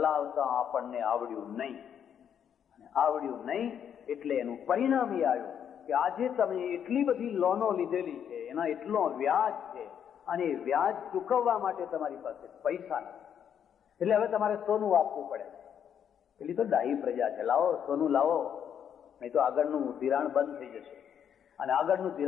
આપણને આવડ્યું નહીં. અને આવડ્યું નહીં એટલે એનું પરિણામ એ આવ્યું કે આજે તમે એટલી બધી લોનો લીધેલી છે, એના એટલો વ્યાજ છે, અને વ્યાજ ચૂકવવા માટે તમારી પાસે પૈસા નથી. એટલે હવે તમારે સોનું આપવું પડે. પેલી તો ડાહી પ્રજા છે, લાવો સોનું લાવો, નહીં તો આગળનું ધિરાણ બંધ થઈ જશે. અને આગળનું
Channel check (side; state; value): right; quieter; 8.6 dB